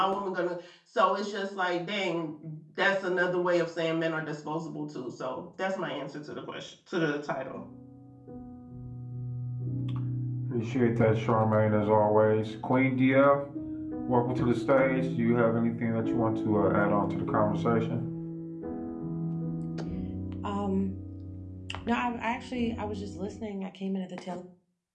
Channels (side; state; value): both; identical; correlation 1.00